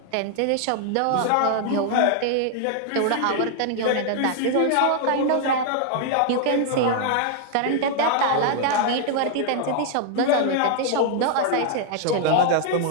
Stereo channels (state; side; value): different; both; correlation 0.00